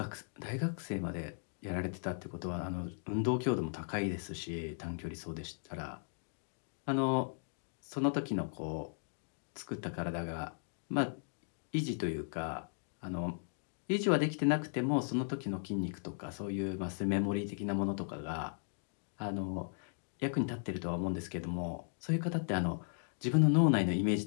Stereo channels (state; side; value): silent; right; digital silence